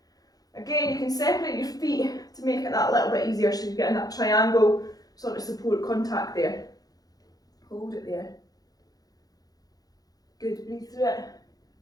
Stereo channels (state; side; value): late; right; 0.18 ms